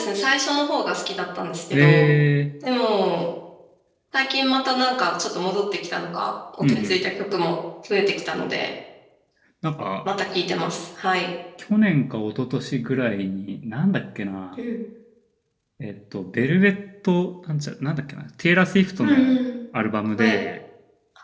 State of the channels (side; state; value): both; identical; correlation 1.00